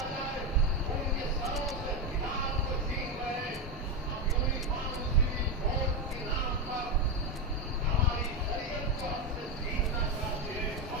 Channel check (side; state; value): both; normal; correlation 0.10